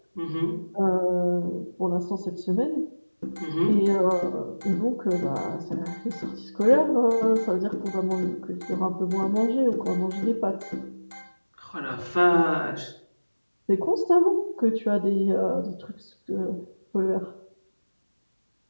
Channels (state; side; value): inverted; both; correlation -1.00